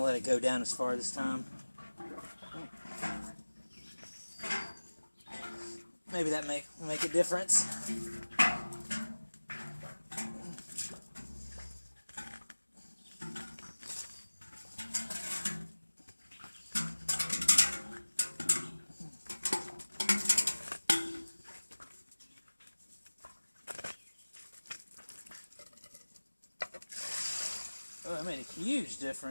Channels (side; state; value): both; inverted; correlation -1.00